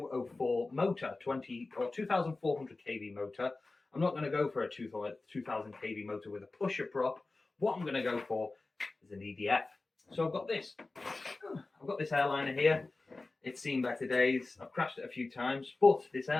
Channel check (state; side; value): quieter; right; 3.4 dB